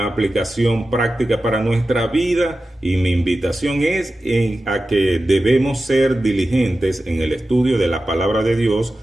aplicación práctica para nuestra vida, y mi invitación es a que debemos ser diligentes en el estudio de la palabra de Dios,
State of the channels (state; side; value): normal; both; correlation 0.94